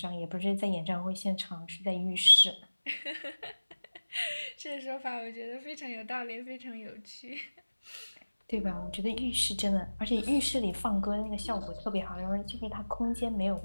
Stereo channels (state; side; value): inverted; both; correlation -1.00